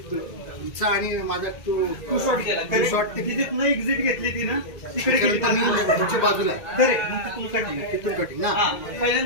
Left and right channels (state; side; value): late; right; 1.9 ms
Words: तुमचा आणि माझा तो टू शॉट गेला. टू शॉट ते तिथे न एक्झिट घेतली ती ना तिकडे गेली. तुमच्या बाजूला आहे. खरे मग तिथून कटिंग. तिथून कटिंग ना. हा